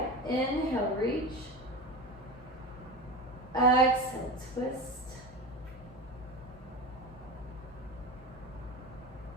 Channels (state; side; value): normal; both; correlation 0.26